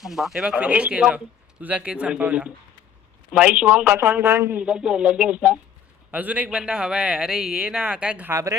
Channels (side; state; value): right; quieter; 7.8 dB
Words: थांबा. हे बघ फिनिश केलं. तुझा केस संपवला. भाई शिवम कसा करून लगेच. अजून एक बंदा हवाय. अरे ये ना. काय